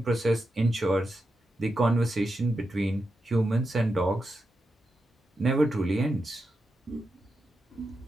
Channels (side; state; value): both; normal; correlation 0.88